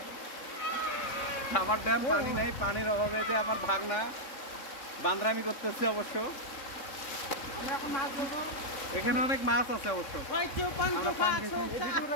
রাবার ড্যাম, পানি নেই, পানির অভাবে যে আমার ভাগনা বান্দরামি করতেছে। অবশ্য এখানে অনেক মাছ আছে অবশ্য।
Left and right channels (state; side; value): late; right; 3.6 ms